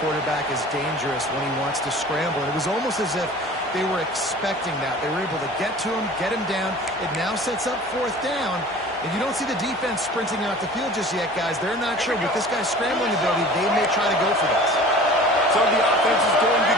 quarterback is dangerous when he wants to scramble. And it was almost as if they were expecting that. They were able to get to him, get him down. It now sets up fourth down. And you don't see the defense sprinting out the field just yet, guys. They're not sure. With this guy's scrambling ability, they may try to go for this. So the offense is going to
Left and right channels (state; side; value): normal; both; correlation 0.43